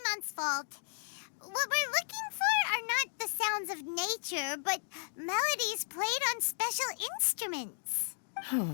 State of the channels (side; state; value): right; silent; digital silence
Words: fault. What we're looking for are not the sounds of nature, but melodies played on special instruments.